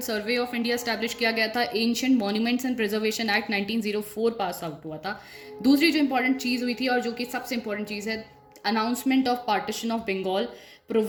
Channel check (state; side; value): identical; both; correlation 1.00